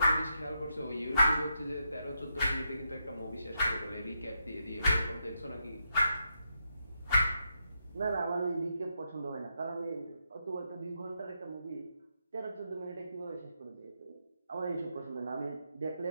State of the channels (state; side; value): inverted; both; correlation -0.83